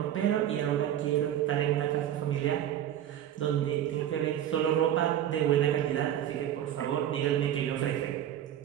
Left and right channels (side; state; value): left; quieter; 11.0 dB